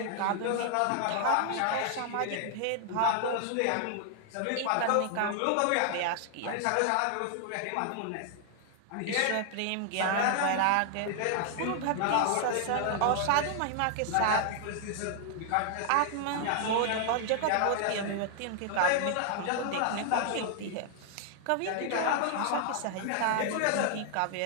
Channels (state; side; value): different; both; correlation 0.00